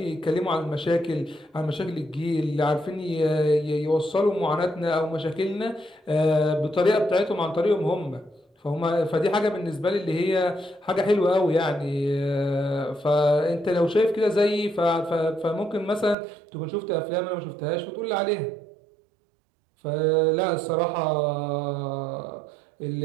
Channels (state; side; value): drops out; left; at 16.2 s